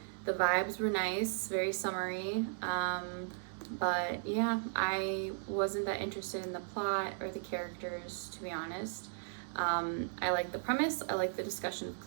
The vibes were nice, very summery. But yeah, I wasn't that interested in the plot or the characters, to be honest. I like the premise, I like the discussion of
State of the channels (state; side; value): silent; left; digital silence